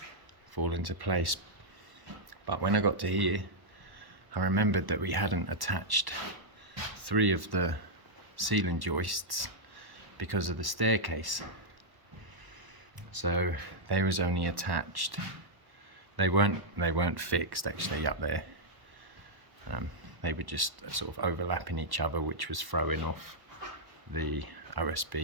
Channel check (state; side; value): late; left; 1.1 ms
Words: fall into place. But when I got to here, I remembered that we hadn't attached 3 of the ceiling joists because of the staircase. So they was only attached, they weren't fixed actually up there. They were just sort of overlapping each other, which was throwing off the